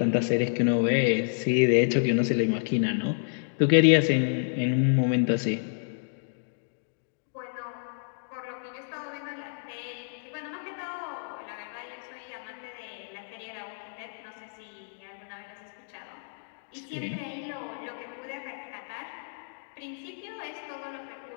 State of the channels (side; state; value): right; silent; digital silence